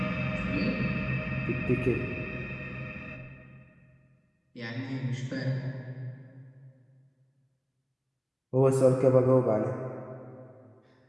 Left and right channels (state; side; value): identical; both; correlation 1.00